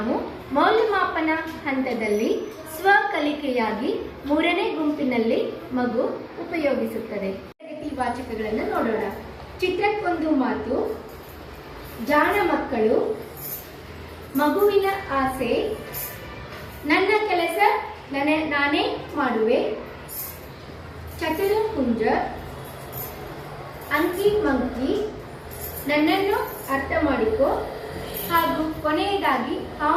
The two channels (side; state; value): both; identical; correlation 1.00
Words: ಮೌಲ್ಯಮಾಪನ ಹಂತದಲ್ಲಿ ಸ್ವಕಲಿಕೆಯಾಗಿ 3ನೇ ಗುಂಪಿನಲ್ಲಿ ಮಗು ಉಪಯೋಗಿಸುತ್ತದೆ. ಈ ವಾಚಕಗಳನ್ನು ನೋಡೋಣ. ಚಿತ್ರಕ್ಕೊಂದು ಮಾತು, ಜಾಣ ಮಕ್ಕಳು, ಮಗುವಿನ ಆಸೆ, ನನ್ನ ಕೆಲಸ ನಾನೇ ಮಾಡುವೆ, ಚತುರ ಹುಂಜ, ಅಂಕಿ ಮಂಕಿ, ನನ್ನನ್ನು ಅರ್ಥ ಮಾಡಿಕೊ ಹಾಗೂ ಕೊನೆಯದಾಗಿ